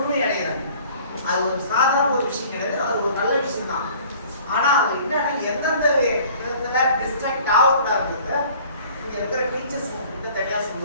அடைகிறாங்க. அது ஒரு சாதாரண ஒரு விஷயம் கிடையாது, அது ஒரு நல்ல விஷயம் தான். ஆனா அது என்னன்னா எந்தெந்த விதத்துல டிஸ்ட்ராக்ட் ஆகக்கூடாதுன்றத இங்க இருக்கிற டீச்சர்ஸ் தனியா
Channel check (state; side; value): inverted; both; correlation -0.50